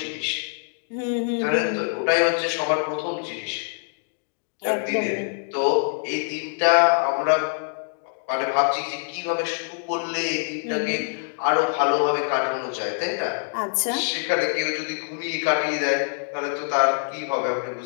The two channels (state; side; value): silent; right; digital silence